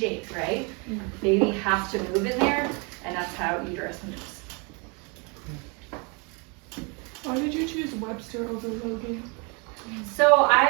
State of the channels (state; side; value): quieter; left; 32.4 dB